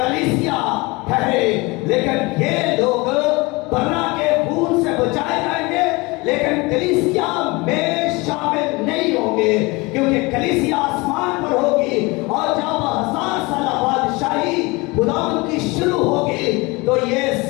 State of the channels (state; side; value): quieter; right; 24.9 dB